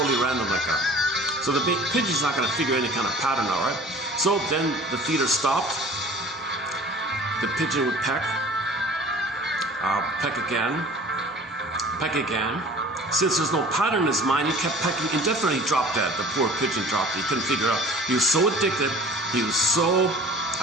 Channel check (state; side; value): normal; both; correlation 0.45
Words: random like that. So the pigeon's not going to figure any kind of pattern out, right? So then the feeder stopped. The pigeon would peck again. Since there's no pattern in his mind, he kept pecking indefinitely. He dropped dead. The poor pigeon dropped. He couldn't figure out. He was so addicted. He was so